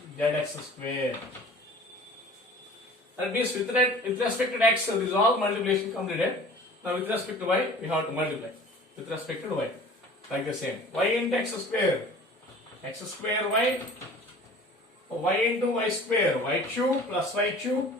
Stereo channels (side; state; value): both; normal; correlation 0.44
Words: square. That means with respect to x, so this is all multiplication completed. Now with respect to y, we have to multiply with respect to y like the same. Y into x square y, y into y square, y cube plus y cube.